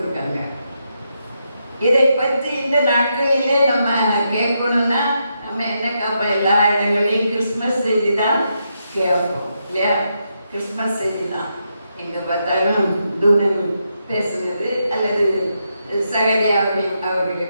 இதை பற்றி இந்த நாட்களிலே நம்ம கேட்கணும்னா நம்ம என்ன கேட்போம்? எல்லா இடங்களையும் கிறிஸ்மஸ் செய்தி தான் கேட்போம் இல்லையா? கிறிஸ்மஸ் செய்தி தான் எங்கே பார்த்தாலும் தூதன் பேசுனது அல்லது சகரியாவை அவர்களை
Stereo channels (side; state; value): both; inverted; correlation -0.82